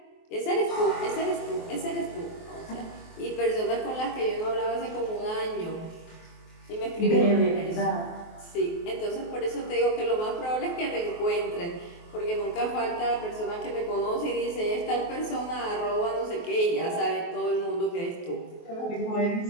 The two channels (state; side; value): late; right; 23 ms